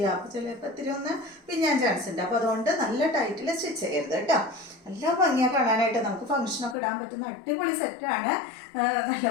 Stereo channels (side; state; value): right; drops out; at 6.8 s